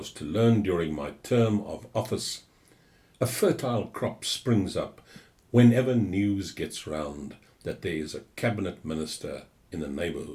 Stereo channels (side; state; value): both; identical; correlation 1.00